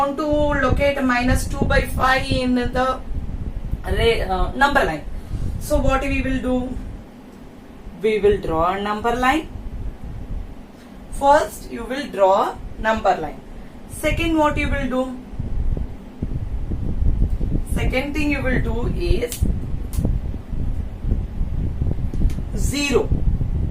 to locate minus 2 by 5 in the number line. So what we will do? We will draw a number line. First, you will draw number line. Second, what you will do? Second thing you will do is 0.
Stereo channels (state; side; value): identical; both; correlation 1.00